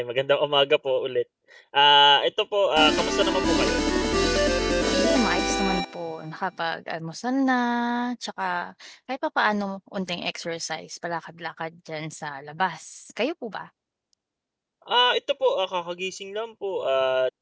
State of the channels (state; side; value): identical; both; correlation 1.00